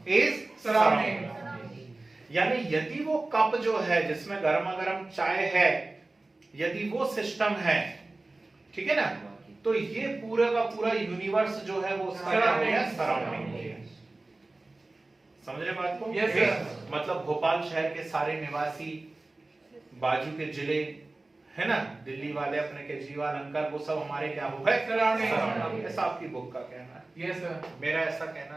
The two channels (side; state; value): left; quieter; 3.0 dB